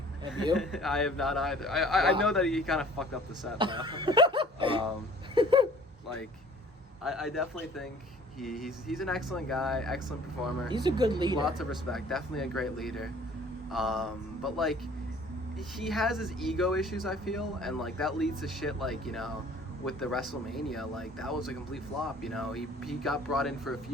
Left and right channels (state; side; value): normal; both; correlation 0.51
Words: Have you? I have not either. I know that he kind of fucked up the set though. Like, I definitely think he's an excellent guy, excellent performer. He's a good leader. Lots of respect. Definitely a great leader. But like, he has his ego issues, I feel, and like that leads to shit like, you know, with the WrestleMania, like that was a complete flop. You know, he got brought in for a